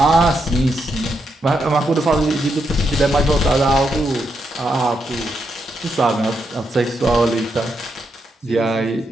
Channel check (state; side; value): normal; both; correlation 0.81